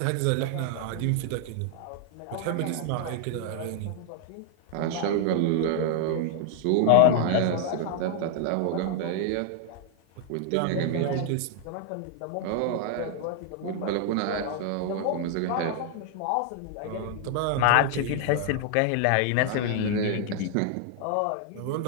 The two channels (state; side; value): different; both; correlation 0.00